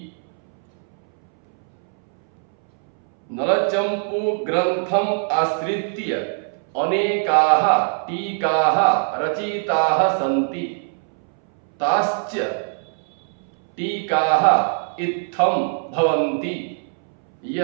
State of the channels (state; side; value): silent; left; 62 dB below the other